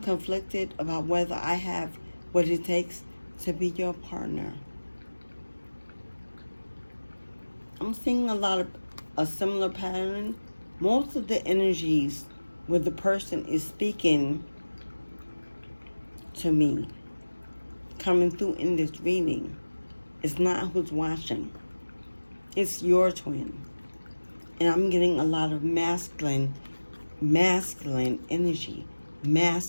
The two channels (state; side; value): inverted; both; correlation -1.00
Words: about whether I have what it takes to be your partner. I'm seeing a similar pattern. Most of the energies where the person is speaking to me, coming through in this reading, it's not who's watching. It's your twin. And I'm getting a lot of masculine energy.